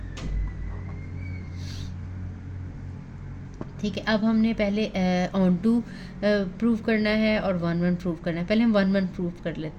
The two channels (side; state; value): both; identical; correlation 1.00